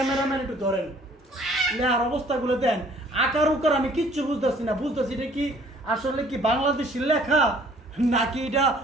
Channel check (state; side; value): normal; both; correlation 0.57